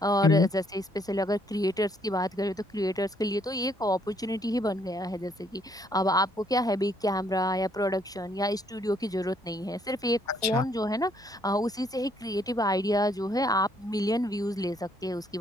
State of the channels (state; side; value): normal; both; correlation 0.68